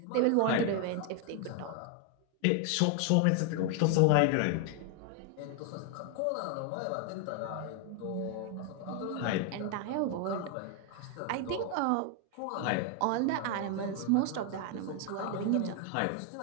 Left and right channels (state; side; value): different; both; correlation 0.01